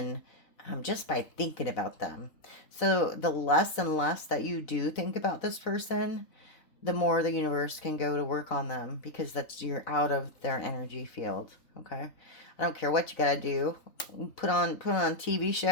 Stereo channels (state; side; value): late; right; 4.0 ms